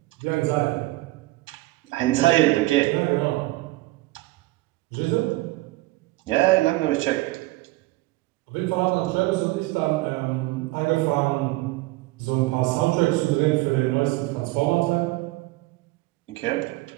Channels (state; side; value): quieter; left; 20.3 dB